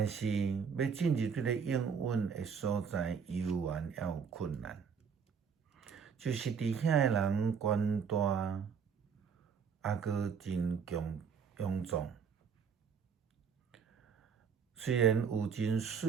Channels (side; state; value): left; quieter; 6.5 dB